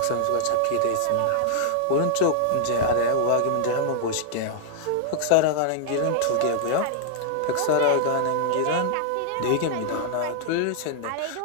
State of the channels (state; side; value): different; both; correlation -0.01